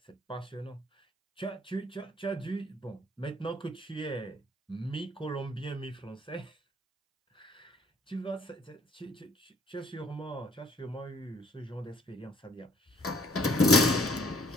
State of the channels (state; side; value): normal; both; correlation 0.61